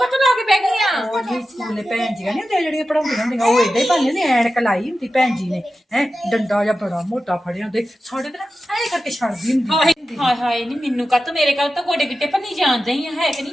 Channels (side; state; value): both; normal; correlation 0.93